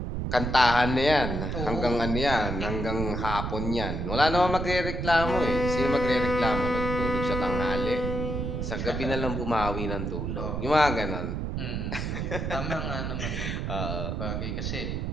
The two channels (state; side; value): noise; right; rumble, 2 dB below the sound